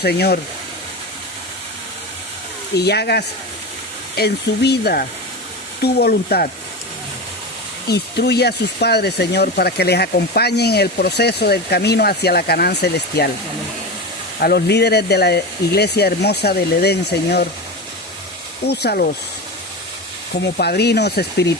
Señor. Y hagas en su vida tu voluntad. Instruye a sus padres, Señor, para que les acompañen en el proceso del camino hacia la Canaán celestial. A los líderes de la iglesia hermosa del Edén, Señor, úsalos como padrinos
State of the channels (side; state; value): both; normal; correlation 0.23